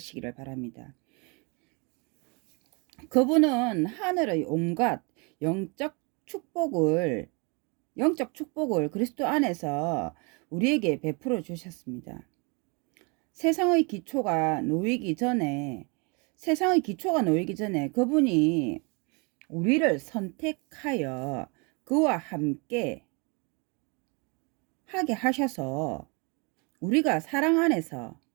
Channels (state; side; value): quieter; left; 31.5 dB